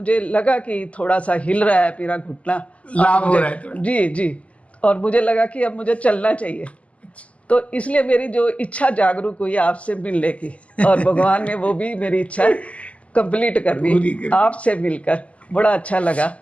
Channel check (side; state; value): right; late; 0.065 ms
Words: लगा कि थोड़ा सा हिल रहा है मेरा घुटना, लाभ हो रहा है। जी जी। और मुझे लगा कि अब मुझे चलना चाहिए, तो इसलिए मेरी जो इच्छा जागरूक हुई आपसे मिलने की, और भगवान ने वो भी मेरी इच्छा कंप्लीट कर दी आपसे मिलकर। बड़ा अच्छा लगा